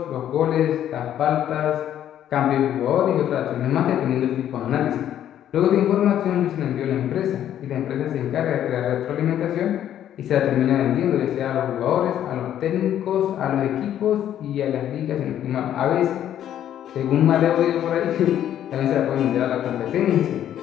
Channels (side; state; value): right; quieter; 10.9 dB